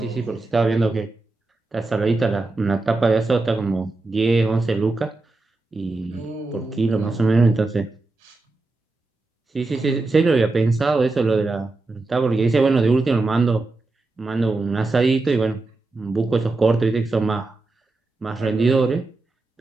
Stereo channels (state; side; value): quieter; left; 3.3 dB